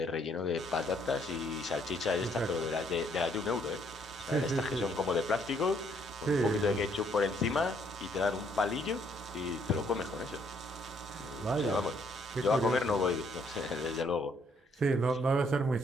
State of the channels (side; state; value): both; normal; correlation 0.67